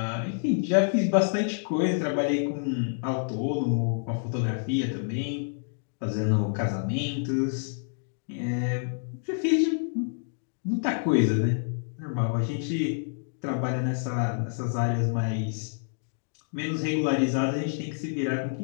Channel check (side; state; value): right; silent; digital silence